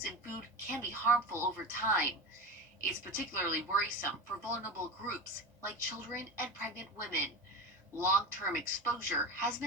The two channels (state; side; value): normal; both; correlation 0.26